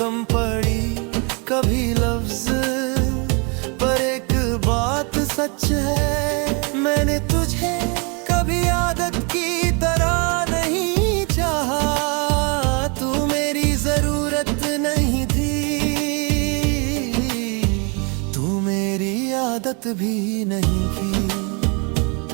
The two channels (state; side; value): quieter; left; 33.4 dB